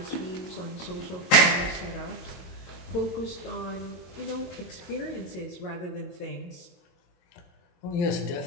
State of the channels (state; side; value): late; right; 22 ms